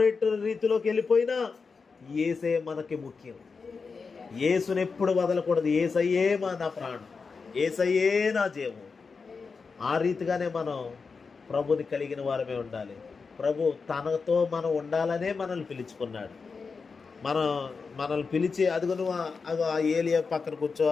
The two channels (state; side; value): quieter; right; 4.9 dB